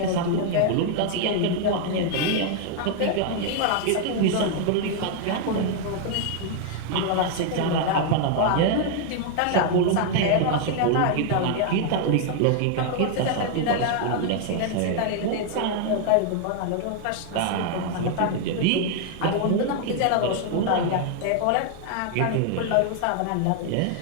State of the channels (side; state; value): both; different; correlation 0.00